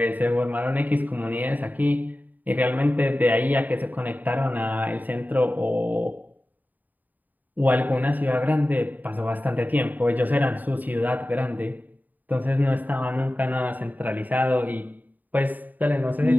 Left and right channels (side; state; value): left; late; 0.084 ms